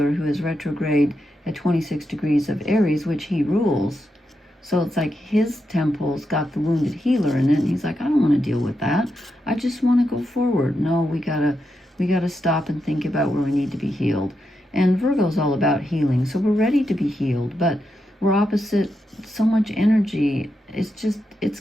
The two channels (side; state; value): both; normal; correlation 0.85